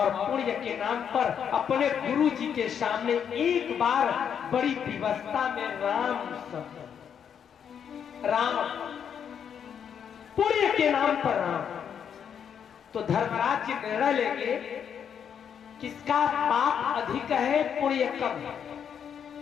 पुण्य के नाम पर अपने गुरु जी के सामने एक बार बड़ी विवस्था में राम शब्द, राम, पुण्य के नाम पर राम। तो धर्मराज जी निर्णय लेंगे किसका पाप अधिक है, पुण्य कम है,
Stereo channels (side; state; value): right; quieter; 8.0 dB